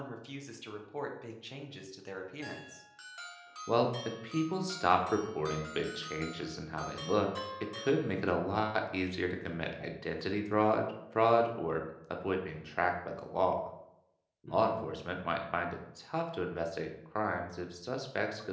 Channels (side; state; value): both; identical; correlation 1.00